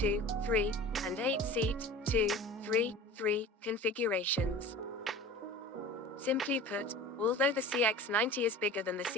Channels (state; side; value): normal; both; correlation 0.38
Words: and 8-seat, 2-3-3 configurations. Simply put, although the CX-90 is bigger than the